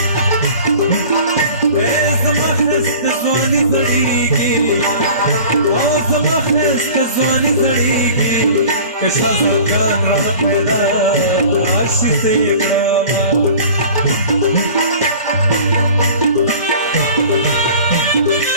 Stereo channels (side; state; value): both; inverted; correlation -0.43